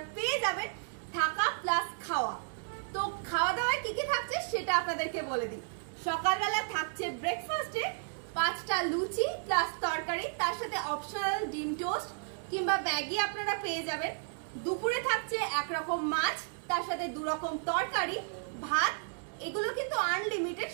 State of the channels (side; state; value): left; silent; digital silence